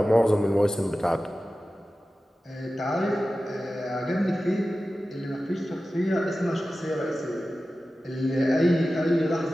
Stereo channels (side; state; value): both; normal; correlation 0.95